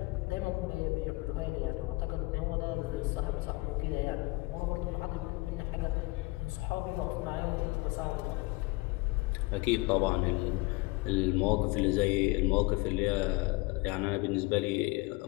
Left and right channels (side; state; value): right; quieter; 23.8 dB